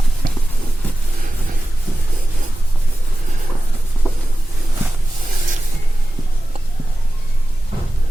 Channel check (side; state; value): both; normal; correlation 0.95